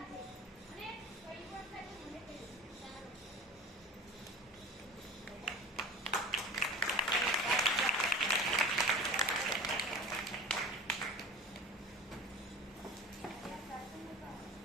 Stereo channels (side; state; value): both; normal; correlation 0.37